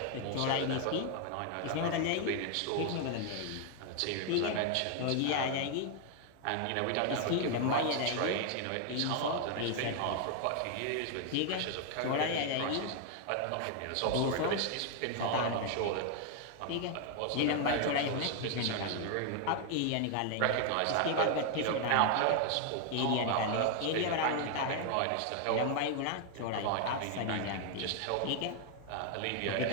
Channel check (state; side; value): different; both; correlation 0.00